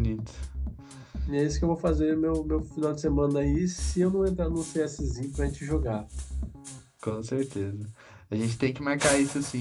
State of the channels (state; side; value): identical; both; correlation 1.00